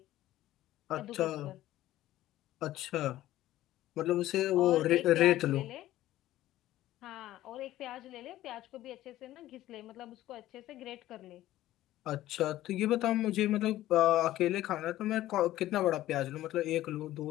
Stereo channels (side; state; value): right; quieter; 14.6 dB